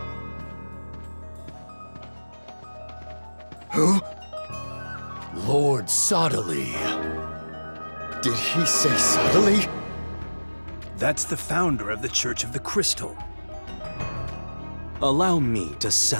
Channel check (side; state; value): both; inverted; correlation -1.00